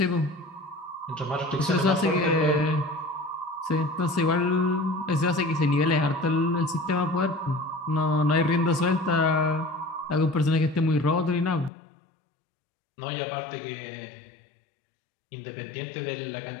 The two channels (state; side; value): drops out; right; at 11.7 s